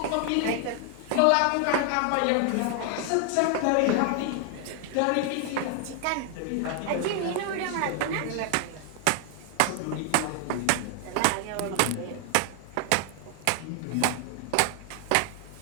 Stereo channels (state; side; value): different; both; correlation 0.00